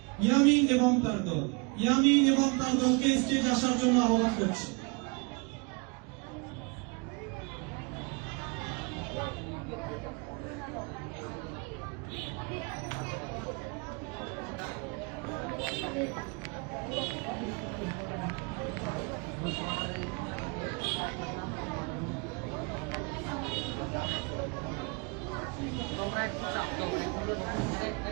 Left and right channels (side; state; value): left; quieter; 31.5 dB